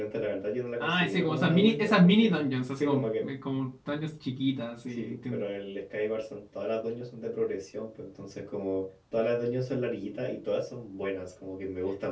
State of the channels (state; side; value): identical; both; correlation 1.00